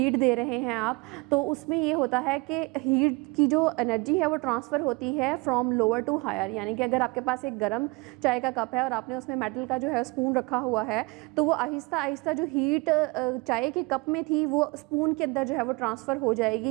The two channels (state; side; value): quieter; left; 26.3 dB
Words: दे रहे हैं आप, तो उसमें ये होता है कि हीट की जो एनर्जी है वो ट्रांसफ़र होती है फ्रॉम लोअर टू हायर। यानी कि अगर आपके पास एक गर्म चाय का कप है और आपने उसमें मेटल का जो है स्पून रखा हुआ है, तो वो आहिस्ता आहिस्ता जो हीट चाय के कप में थी वो स्पून के अंदर जो है वो ट्रांसफ़र हो